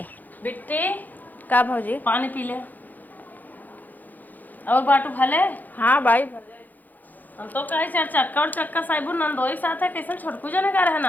बिट्टी का भौजी पानी पी ले और बाटू भले। हाँ भाई हम तो कहे चार चक्का और चक्का साइबू नंदोई साथ है कैसे छोटकू जने का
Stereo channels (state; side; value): late; right; 0.084 ms